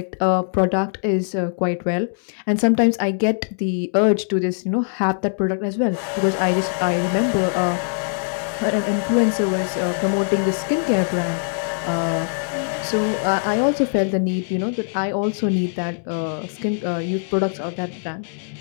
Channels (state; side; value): silent; right; digital silence